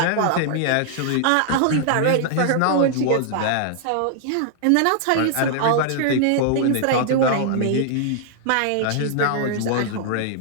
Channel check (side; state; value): both; different; correlation -0.01